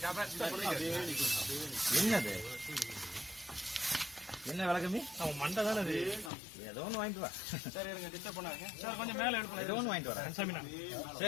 என்னது என்ன விளக்கமி? அவன் மண்டை தானே அது. ஏதோ ஒன்று வாங்கிட்டு வா. சரி இருங்க, டிஸ்டர்ப் பண்ணாங்க சார். கொஞ்சம் மேலே எடுக்கணும். ஏதோ ஒன்று வாங்கிட்டு வரேன்.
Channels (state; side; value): drops out; right; at 6.3 s